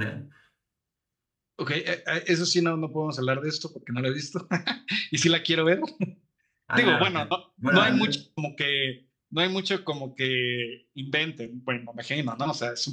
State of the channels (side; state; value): both; identical; correlation 1.00